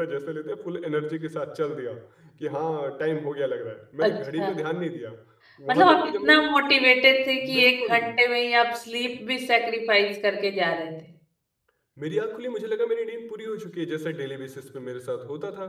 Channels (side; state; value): both; identical; correlation 1.00